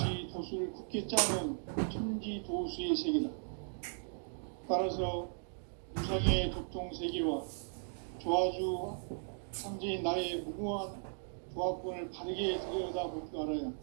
도수를 굳게 짜놓은 천지 도수의 세계다. 따라서 무상의 도통 세계와 조화주 상제인 나의 무궁한 조합권을 바르게 들여다볼 줄 알아야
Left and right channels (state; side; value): silent; left; digital silence